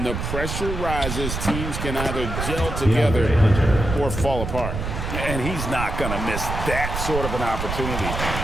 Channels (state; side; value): noise; right; rumble, 4 dB below the sound